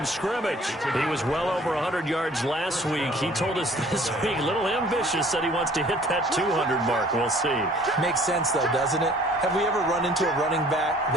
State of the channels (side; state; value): both; normal; correlation 0.54